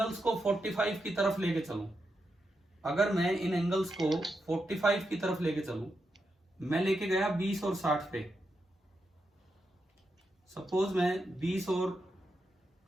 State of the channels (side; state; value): both; normal; correlation 0.85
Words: को 45 की तरफ लेके चलूं, अगर मैं इन एंगल्स को 45 की तरफ लेके चलूं, मैं लेके गया 20 और 60 पे, सपोज मैं 20 और